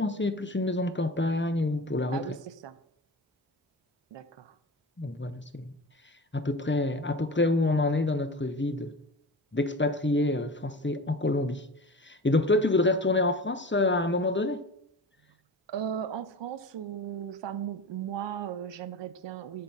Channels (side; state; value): both; normal; correlation 0.34